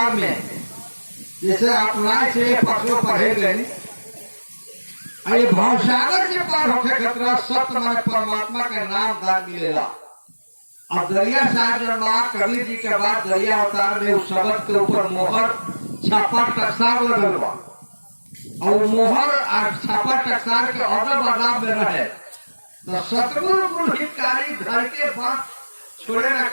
में जैसे अपनाए से पशु पढ़े गए, अरे भावसागर से पार होके खतरा सत्य मन परमात्मा के नाम दान मिलेगा। अब दरिया साहब जन्मा कबीर जी के बाद दरिया अवतार में उस शब्द के ऊपर मोहर छापा टकसार लगल बा, और मोहर छापा टकसार के अदब अदाब में रहे तो सतगुरु गुरु हितकारी धर के बात छोड़े न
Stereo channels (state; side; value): inverted; both; correlation -1.00